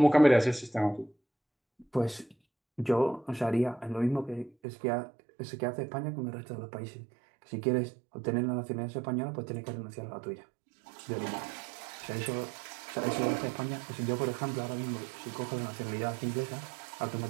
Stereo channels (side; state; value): left; drops out; at 4.5 s